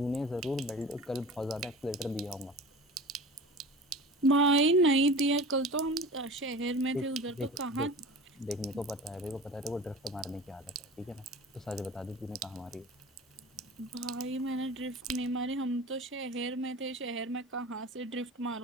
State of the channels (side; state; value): both; normal; correlation 0.37